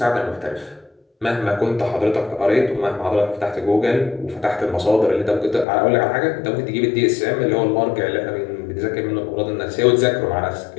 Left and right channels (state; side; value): drops out; right; at 5.7 s